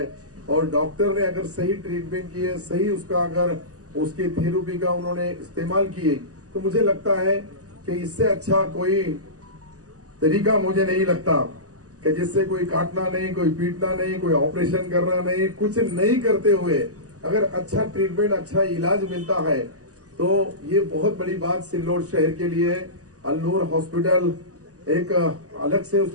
और डॉक्टर ने अगर सही ट्रीटमेंट किए, सही उसका अगर उसकी थेरेपी का उन्होंने इस्तेमाल किए, तो मुझे लगता है कि इससे अच्छा कोई तरीका मुझे नहीं लगता कि जिससे कोई काटना नहीं, कोई पीटना नहीं, कोई ऑपरेशन करना नहीं, कुछ नहीं करते हुए अगर अच्छा ट्रीटमेंट, अच्छा इलाज मिलता है तो ये बहुत बड़ी बात सिल्लोड शहर के लिए है। अल्नूर हॉस्पिटल एक अलग से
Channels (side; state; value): left; late; 0.67 ms